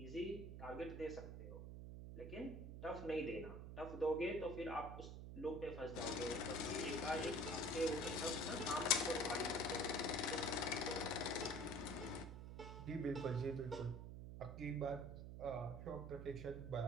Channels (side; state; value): right; noise; hum, 8 dB below the sound